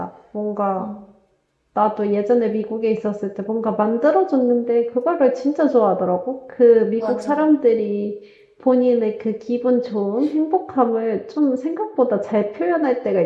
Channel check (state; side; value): identical; both; correlation 1.00